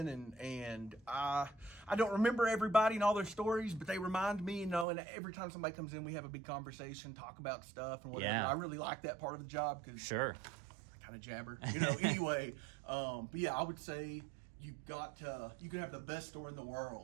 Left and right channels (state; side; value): drops out; left; at 4.9 s